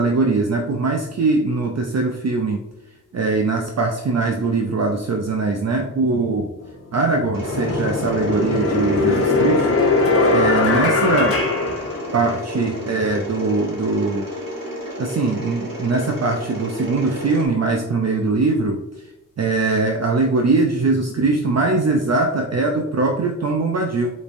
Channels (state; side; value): normal; both; correlation 0.17